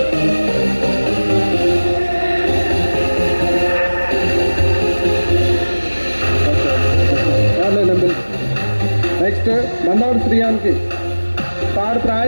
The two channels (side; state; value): both; inverted; correlation -1.00